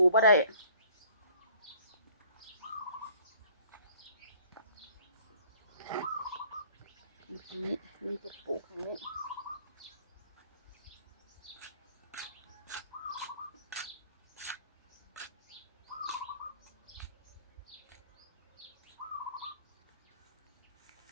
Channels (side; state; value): both; inverted; correlation -0.54